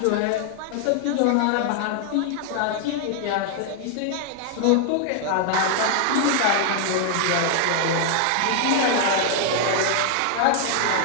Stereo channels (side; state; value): both; different; correlation 0.00